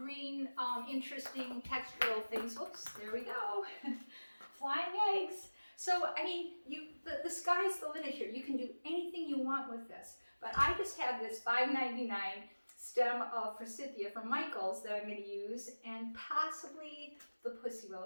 interesting textural things. Whoops, there we go. Flying eggs. So, I mean, the sky's the limit here. You can do anything you want with this. But I just have this $5.99 stem of forsythia from Michael's that I'm going to use, and possibly the pussy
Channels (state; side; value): inverted; both; correlation -1.00